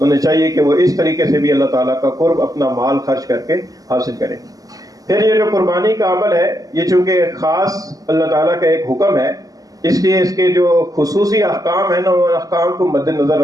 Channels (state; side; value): late; left; 0.17 ms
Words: چاہیے کہ وہ اس طریقے سے بھی اللہ تعالیٰ کا قرب اپنا مال خرچ کر کے حاصل کریں۔ پھر یہ جو قربانی کا عمل ہے یہ چونکہ خاص اللہ تعالیٰ کا ایک حکم ہے، اس لیے اس کے جو خصوصی احکام ہیں نا ان احکام کو مد نظر